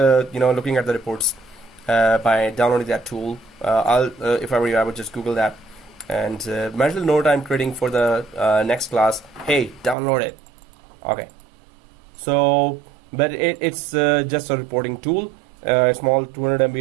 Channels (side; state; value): left; drops out; at 10.0 s